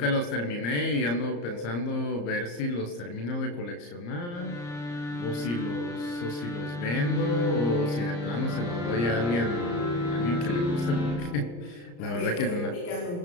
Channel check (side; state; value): right; late; 34 ms